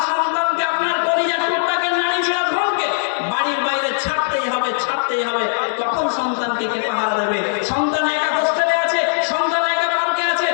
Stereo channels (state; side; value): silent; right; 66 dB below the other